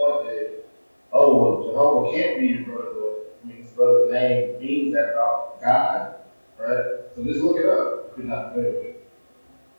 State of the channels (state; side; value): inverted; both; correlation -1.00